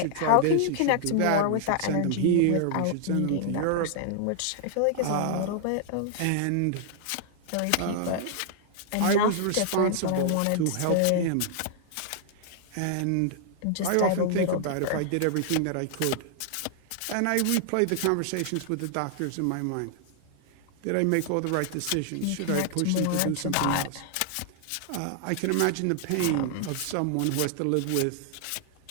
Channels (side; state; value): both; different; correlation 0.00